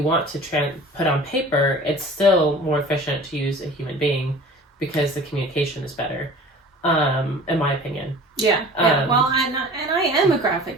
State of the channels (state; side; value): normal; both; correlation 0.43